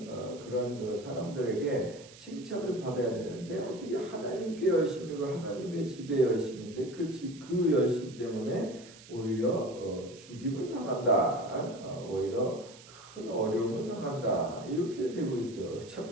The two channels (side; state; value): right; noise; hiss, 20 dB below the sound